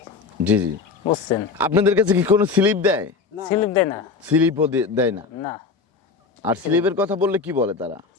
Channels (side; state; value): right; quieter; 4.9 dB